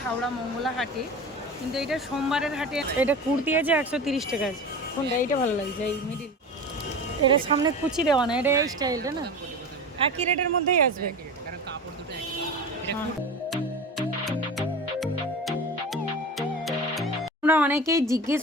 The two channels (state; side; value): normal; both; correlation 0.31